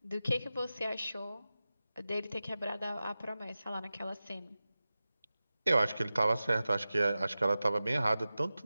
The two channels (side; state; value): both; inverted; correlation -0.95